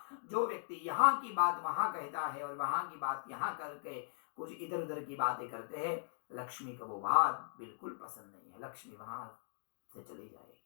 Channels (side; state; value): right; silent; digital silence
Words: जो व्यक्ति यहाँ की बात वहां कहता है और वहां की बात यहाँ करके कुछ इधर उधर की बातें करते हैं, लक्ष्मी को वो बात बिल्कुल पसंद नहीं है। लक्ष्मी वहां से चली जाएगी।